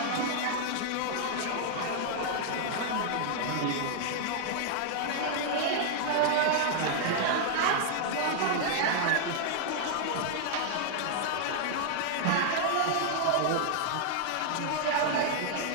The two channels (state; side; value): different; both; correlation 0.00